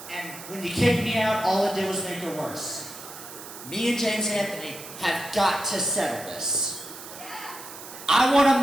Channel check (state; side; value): noise; right; hiss, 14 dB below the sound